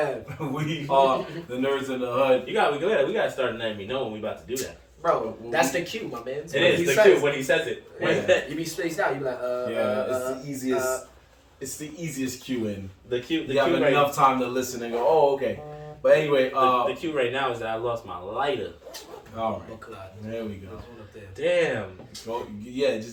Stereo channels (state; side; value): identical; both; correlation 1.00